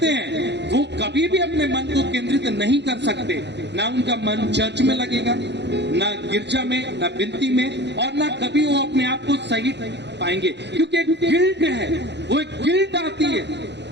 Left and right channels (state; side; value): late; left; 0.50 ms